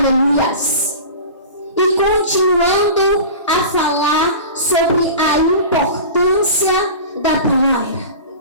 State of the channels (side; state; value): both; inverted; correlation -0.34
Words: E continuando a falar sobre a importância da palavra.